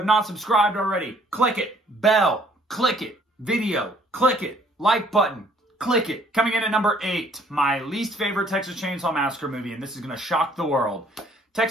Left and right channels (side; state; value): both; normal; correlation 0.61